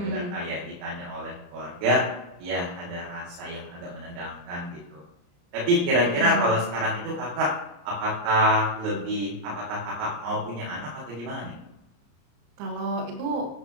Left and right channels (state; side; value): late; left; 34 ms